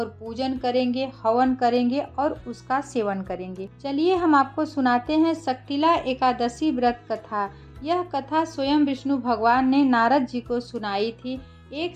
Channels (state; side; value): identical; both; correlation 1.00